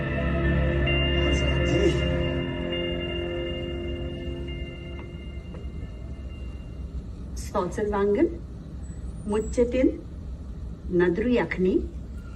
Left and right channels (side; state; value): both; identical; correlation 1.00